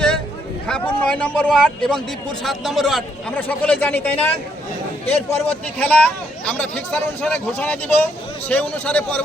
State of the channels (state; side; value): normal; both; correlation 0.73